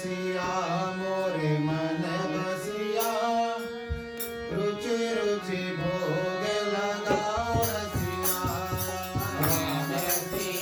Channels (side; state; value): both; identical; correlation 1.00